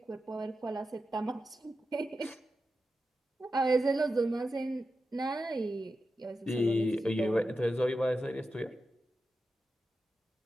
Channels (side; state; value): both; normal; correlation 0.91